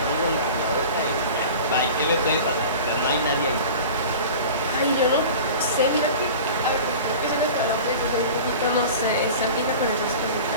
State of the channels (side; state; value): both; inverted; correlation -0.37